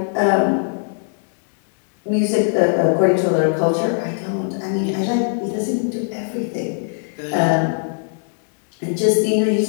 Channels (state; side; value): silent; right; digital silence